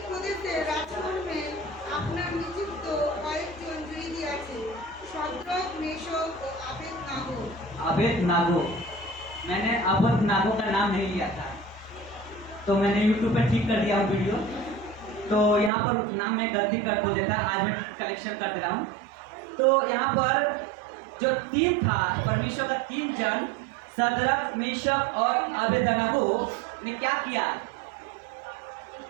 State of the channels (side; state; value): left; drops out; at 15.7 s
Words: প্রদেশে রাজকর্মে আপনার নিযুক্ত কয়েকজন জয়ী আছে, সদরক, মেশক ও আবেদনাগো। अबेदनागो, मैंने अबेदनागो का नाम नहीं लिया था, तो मैंने YouTube पे ठीक कर दिया हूँ वीडियो। तो यहाँ पर नाम मैं गलती कर दो देता, आज मैं कलेक्शन कर दे रहा हूँ। तो यहाँ पर जो 3 था, परमेश्वर का 3 जन सदरक, मेशक और अबेदनागो ने क्या किया?